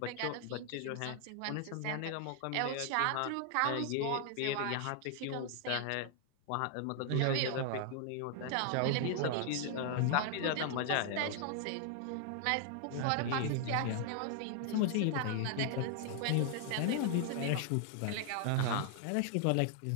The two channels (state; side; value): different; both; correlation 0.00